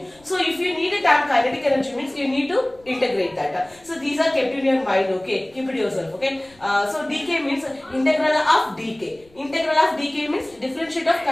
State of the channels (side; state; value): left; noise; rumble, 29 dB below the sound